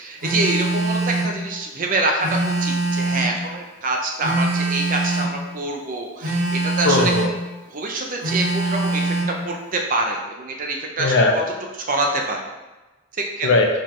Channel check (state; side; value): normal; both; correlation 0.23